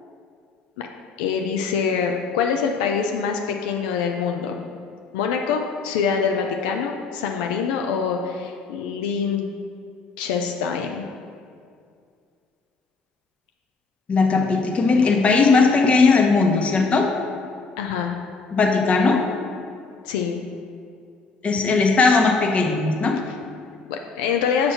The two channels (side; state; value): right; quieter; 4.4 dB